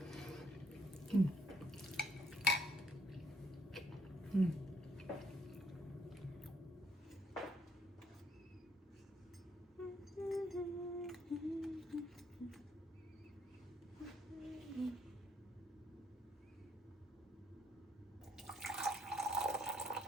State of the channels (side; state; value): both; normal; correlation 0.70